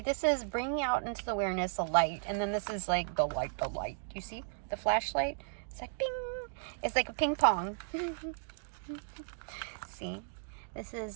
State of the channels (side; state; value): left; silent; digital silence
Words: this is bringing out into the awareness a light, and then this is like the light. You see the flashlight? It's like bing. It's like a ping pong. See, this is